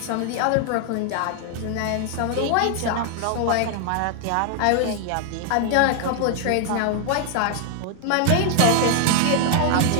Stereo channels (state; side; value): different; both; correlation 0.00